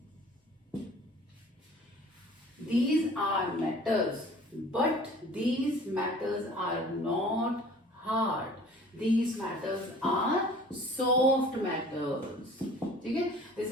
These are metals, but these metals are not hard. These metals are soft metals. Okay? This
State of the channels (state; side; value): normal; both; correlation 0.48